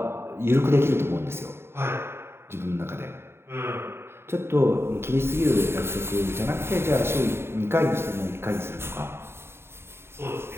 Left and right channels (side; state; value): left; late; 0.12 ms